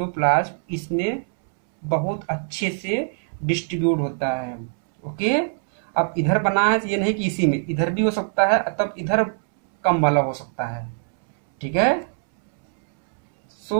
इसमें बहुत अच्छे से डिस्ट्रीब्यूट होता है। ओके, अब इधर बना है तो ये नहीं कि इसी में, इधर भी हो सकता है, तब इधर कम वाला हो सकता है। ठीक है,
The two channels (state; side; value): silent; left; 64 dB below the other